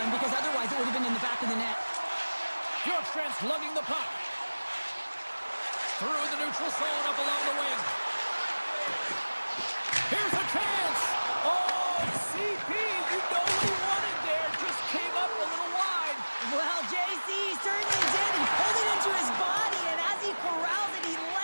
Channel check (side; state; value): both; inverted; correlation -1.00